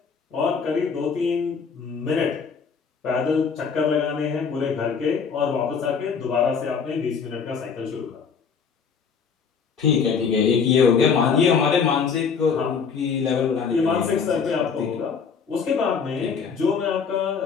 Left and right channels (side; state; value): right; quieter; 6.0 dB